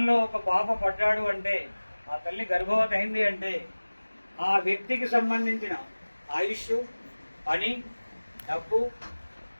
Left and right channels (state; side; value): inverted; both; correlation -1.00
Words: ఒక పాప పడ్డాడు అంటే, ఆ తల్లి గర్భవతి అయింది అంటే, ఆ వ్యక్తికి సంబంధించిన ఆయుష్, పని, డబ్బు,